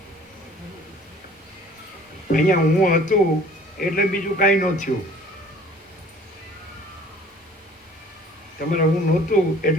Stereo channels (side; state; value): both; normal; correlation 0.52